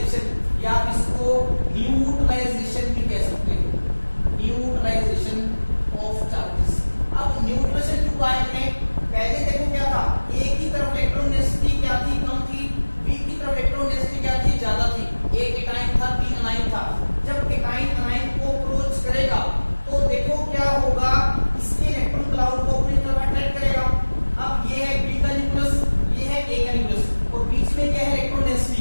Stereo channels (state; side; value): inverted; both; correlation -1.00